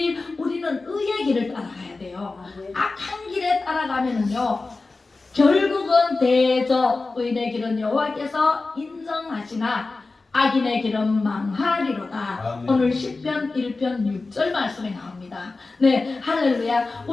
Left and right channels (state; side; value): quieter; right; 3.6 dB